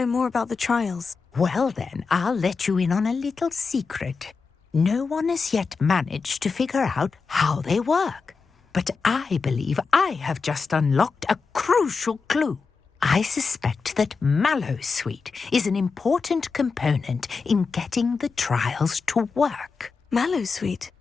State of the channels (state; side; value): quieter; right; 4.9 dB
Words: more about the trials. Well then, I'll let you in on a little secret. No one has yet managed to figure out how they work. But I believe I have just unlocked a crucial clue. I suspect that Mallowsweet is an important component in getting the trials to work. Mallowsweet?